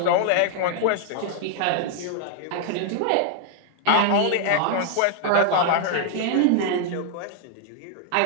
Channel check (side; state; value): both; different; correlation -0.01